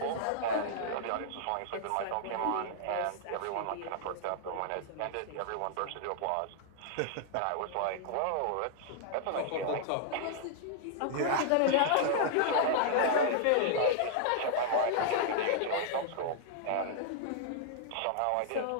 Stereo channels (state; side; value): different; both; correlation -0.01